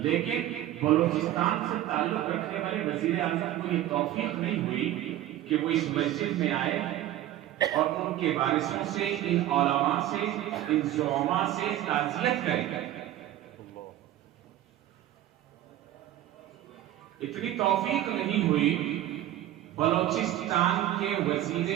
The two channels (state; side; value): quieter; left; 13.3 dB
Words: بلوچستان سے تعلق رکھنے والے وزیر اعظم کو یہ توفیق نہیں ہوئی کہ وہ اس مسجد میں آئے اور ان کے وارثوں سے، ان علماء سے، ان زعماء سے تعزیت کریں۔ اتنی توفیق نہیں ہوئی بلوچستان کے